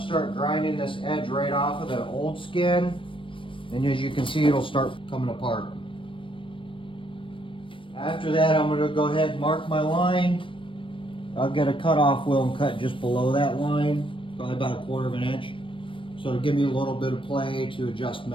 start grinding this edge right off of the old skin. And as you can see, it'll start coming apart. After that, I'm going to go ahead and mark my line. I'll get a cutoff wheel and cut just below that line, probably about 1/4 of an inch. So to give me a little bit of play to adjust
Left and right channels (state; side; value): late; right; 0.25 ms